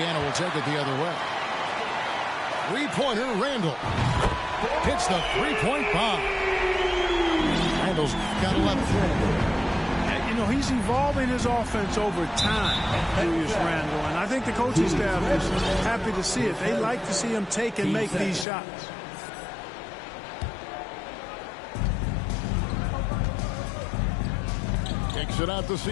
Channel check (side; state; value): right; drops out; at 18.4 s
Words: will take it the other way. Three-pointer, Randall. Hits the three-point bomb. Randall's got 11. You know, he's evolving his offense over time, Julius Randle, and I think the coaching staff is happy to see it. They like to see him take and make these shots. Kicks it out to